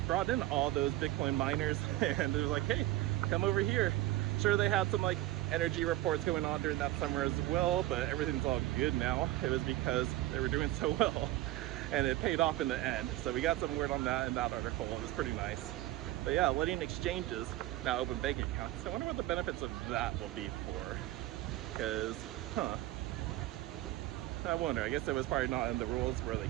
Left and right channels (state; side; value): quieter; left; 16.1 dB